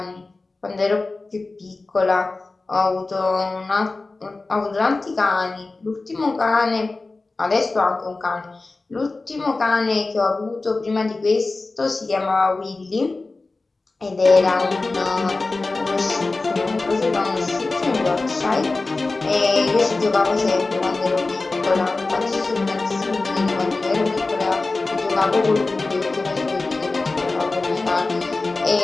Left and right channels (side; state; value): right; quieter; 3.5 dB